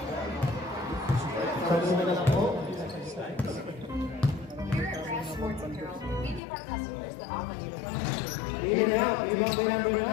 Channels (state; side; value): drops out; right; at 6.4 s